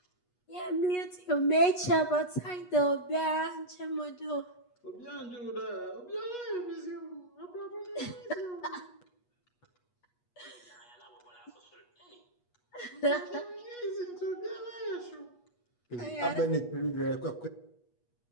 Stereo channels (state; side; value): late; right; 8.3 ms